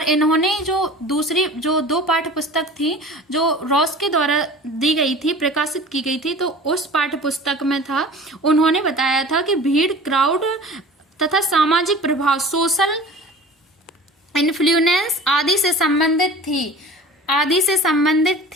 इन्होंने जो 2 पाठ्य पुस्तक थी जो रॉस के द्वारा दी गई थी, प्रकाशित की गई थी, तो उस पाठ्य पुस्तक में था, उन्होंने बताया था कि भीड़ क्राउड तथा सामाजिक प्रभाव सोशल इन्फ्लुएंस आदि से संबंधित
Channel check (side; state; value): both; normal; correlation 0.41